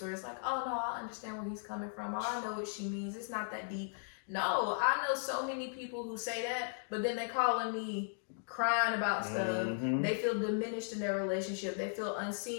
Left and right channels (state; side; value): silent; right; digital silence